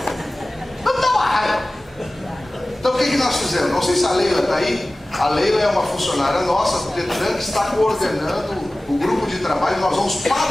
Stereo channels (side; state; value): both; normal; correlation 0.97